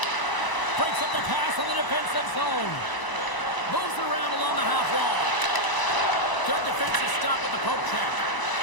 Breaks up the pass on the defensive zone. Moves it around along the half wall. Good defensive stop with the poke check.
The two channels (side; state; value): right; late; 1.0 ms